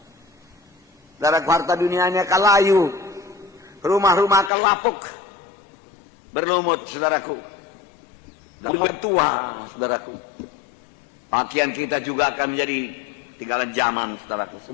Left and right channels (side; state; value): right; drops out; at 4.5 s